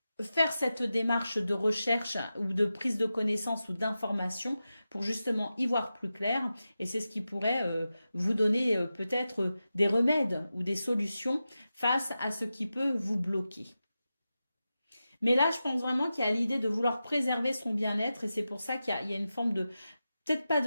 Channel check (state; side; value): inverted; both; correlation -0.92